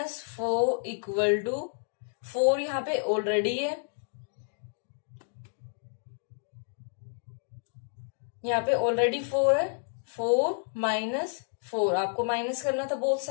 इक्वल टू 4 यहां पे ऑलरेडी है. यहां पे ऑलरेडी 4 है. 4 -4 आपको माइनस करना था, बोथ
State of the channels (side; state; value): right; silent; digital silence